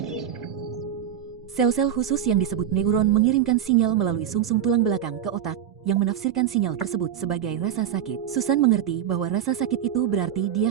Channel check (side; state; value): left; quieter; 9.9 dB